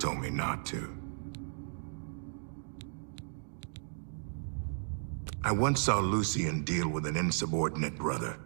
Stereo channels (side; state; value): left; silent; digital silence